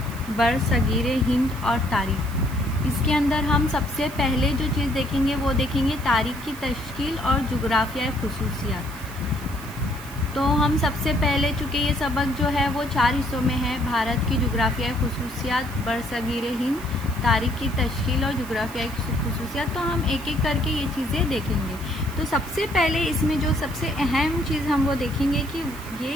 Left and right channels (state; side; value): noise; right; hiss, 18 dB below the sound